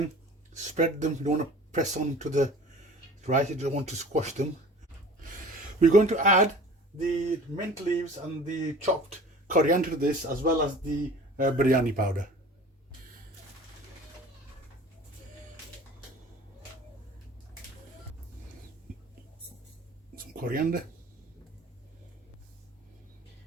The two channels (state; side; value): normal; both; correlation 0.44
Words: spread them. You don't want to press on to the rice, you don't want to squash them. We're going to add the mint leaves and the chopped coriander to this, as well as the biryani powder. Some coriander.